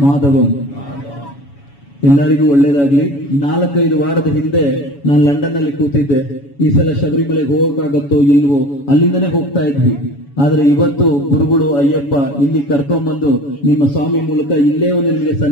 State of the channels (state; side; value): late; right; 7.1 ms